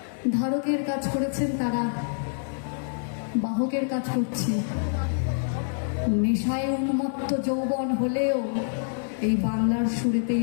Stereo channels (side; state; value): right; silent; 61 dB below the other